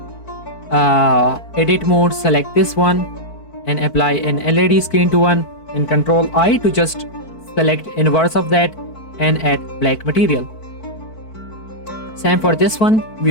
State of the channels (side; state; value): right; late; 4.5 ms